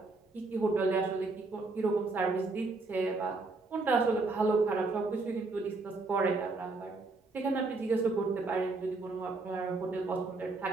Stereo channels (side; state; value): left; quieter; 3.6 dB